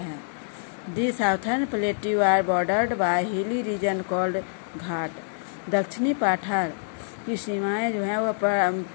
The southern plateau are bordered by hilly region called ghat. दक्षिणी पठार की सीमाएं जो है वह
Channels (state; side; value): silent; right; 61 dB below the other